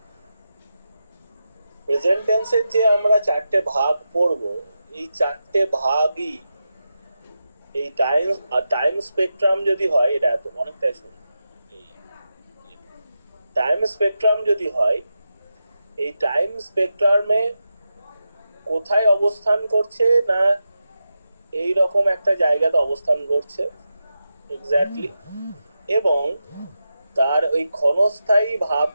প্রেজেন্ট টেন্সের যে আমরা 4টে ভাগ পড়ব, এই 4টে ভাগই এই টাইম স্পেকট্রাম যদি হয়, এটা এত অনেকটাই শুনি, টাইম স্পেকট্রাম যদি হয়, এই টাইম স্পেকট্রামে কোথায় অবস্থান করছে না এই রকম একটা জায়গাতে অবস্থান করছে এক্স্যাক্টলি, এবং তার ওই ক্ষণস্থায়ী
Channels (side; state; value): both; inverted; correlation -0.90